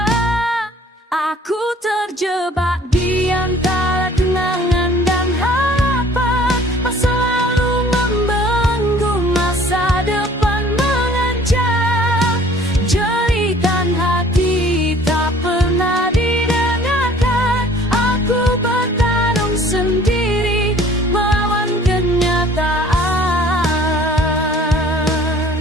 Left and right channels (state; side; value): normal; both; correlation 0.53